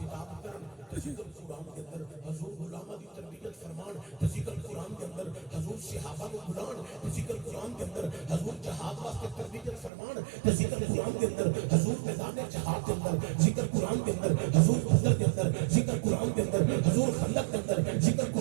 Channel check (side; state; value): left; drops out; at 9.9 s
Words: کرن ذکر قرآن کے اندر، حضور علماء دی تربیت فرمان ذکر قرآن کے اندر، حضور صحابہ کو بلان ذکر قرآن کے اندر، حضور جہاد واسطے تربیت فرمان ذکر قرآن کے اندر، حضور میدان جہاد کے اندر ذکر قرآن کے اندر، حضور بدر کے اندر ذکر قرآن کے اندر، حضور خندق کے اندر ذکر